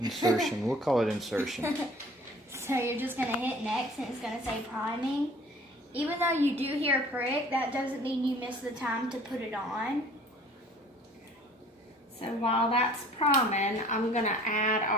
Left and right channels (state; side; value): normal; both; correlation 0.50